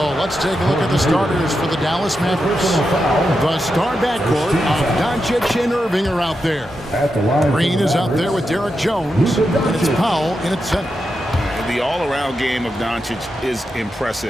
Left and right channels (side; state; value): both; normal; correlation 0.87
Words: let's take a look at the starters for the Dallas Mavericks. The star backcourt of Doncic and Irving are out there. Green is out there with Derek Jones, and it's Powell in at center. The all-around game of Doncic is